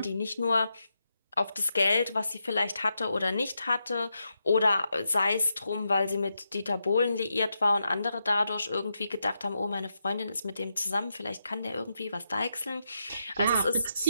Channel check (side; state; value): both; inverted; correlation -0.84